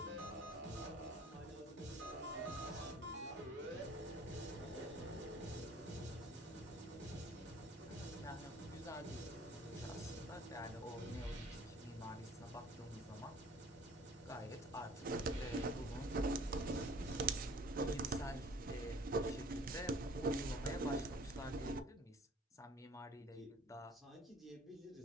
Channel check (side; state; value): both; normal; correlation 0.51